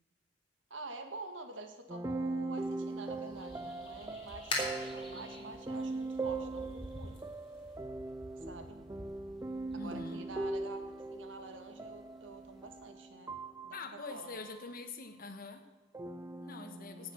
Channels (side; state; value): both; normal; correlation 0.56